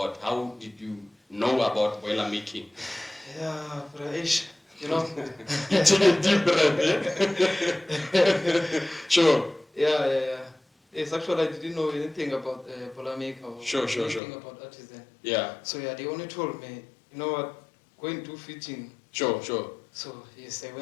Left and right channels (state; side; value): drops out; right; at 14.2 s